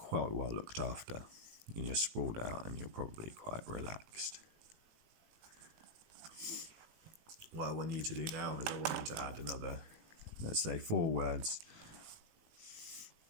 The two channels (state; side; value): late; left; 18 ms